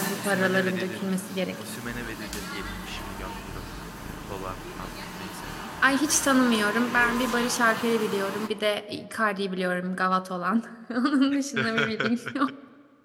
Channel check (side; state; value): both; identical; correlation 1.00